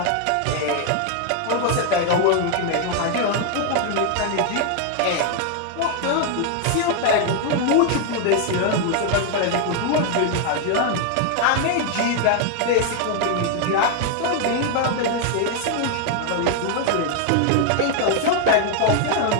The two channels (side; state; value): both; different; correlation 0.00